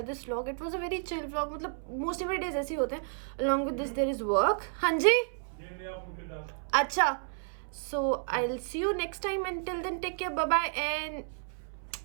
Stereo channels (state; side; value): silent; left; 57 dB below the other